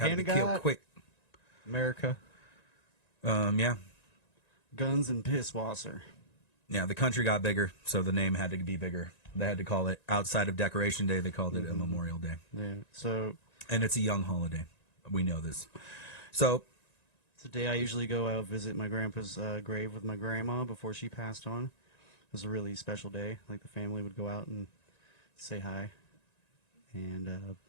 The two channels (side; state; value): right; late; 1.9 ms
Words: to hand be of God. killed quick. America. Yeah. Guns and piss wasser. Yeah, the country got bigger, so the name had to be bigger. They had to call it, outside of Decoration Day, they called it a Memorial Day. Yeah. So And it's a young holiday. We know this. So, it's the day I usually go out visit my grandpa's grave with my grandma before she passed on. It was a really special day. Like the family would go out and say hi, and